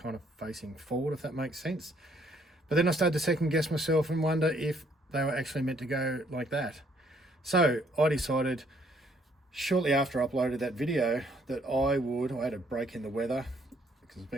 of facing forward, if that makes sense. But then I started to second guess myself and wonder if they were actually meant to go like that. So I decided shortly after I uploaded that video that I had a break in the weather because it's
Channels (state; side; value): normal; both; correlation 0.66